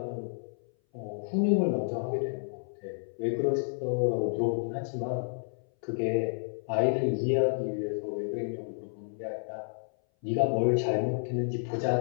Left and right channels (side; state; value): right; silent; 57 dB below the other